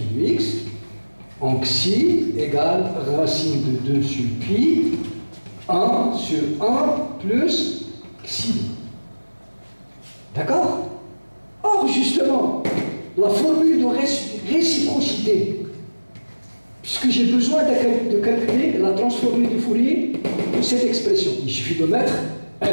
de x en xi égale racine de 2 sur pi 1 sur 1 plus xi. D'accord? Or, justement, la formule de réciprocité, puisque j'ai besoin de calculer la transformée de Fourier de cette expression, il suffit de mettre f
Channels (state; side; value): inverted; both; correlation -1.00